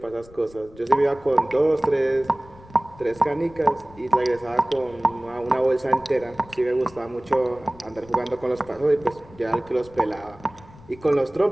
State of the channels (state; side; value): noise; left; rumble, 22 dB below the sound